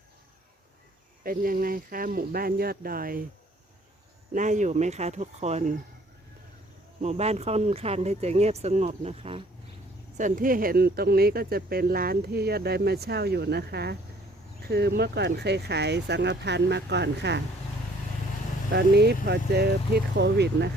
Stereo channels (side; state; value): both; normal; correlation 0.58